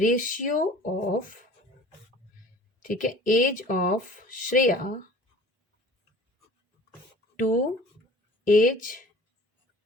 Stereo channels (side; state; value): both; normal; correlation 0.46